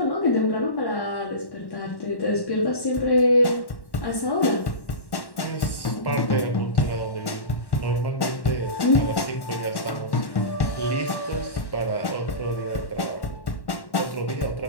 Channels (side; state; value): right; late; 1.1 ms